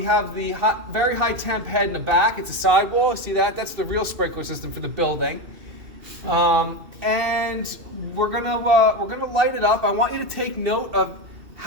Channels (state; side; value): late; left; 2.6 ms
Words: have the very high temp head in the back. It's a sidewall. See that? That's the real sprinkler system for the building. And we're gonna light it up. I want you to take note of